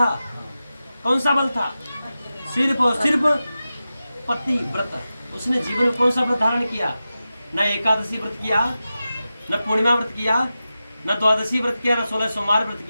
कौन सा बल था? सिर्फ पति व्रत। उसने जीवन में कौन सा व्रत धारण किया? न एकादशी व्रत किया, न पूर्णिमा व्रत किया, न द्वादशी व्रत किया, न 16 सोमवार व्रत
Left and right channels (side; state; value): both; inverted; correlation -0.93